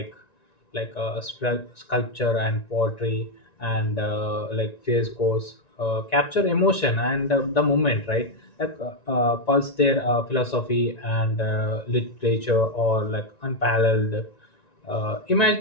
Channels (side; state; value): right; late; 1.9 ms